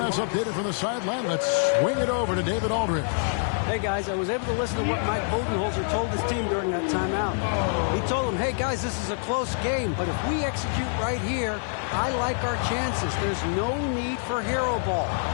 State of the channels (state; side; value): silent; right; 61 dB below the other